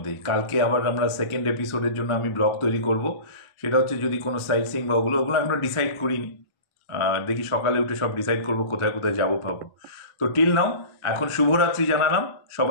কালকে আবার আমরা সেকেন্ড এপিসোডের জন্য আমি ব্লগ তৈরি করব, সেটা হচ্ছে যদি কোনো সাইট সিং বা ওগুলো এখনো ডিসাইড করিনি। দেখি সকালে উঠে সব ডিসাইড করবো কোথায় কোথায় যাবো ভাবো। তো টিল নাও এখন শুভরাত্রি জানালাম,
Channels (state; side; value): late; right; 1.4 ms